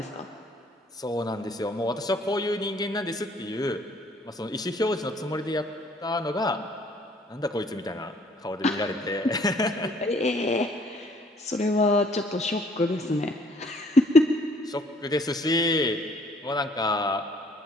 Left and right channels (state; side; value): normal; both; correlation 0.60